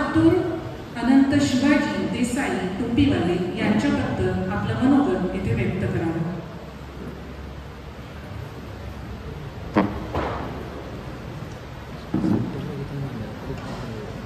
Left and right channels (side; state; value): both; identical; correlation 1.00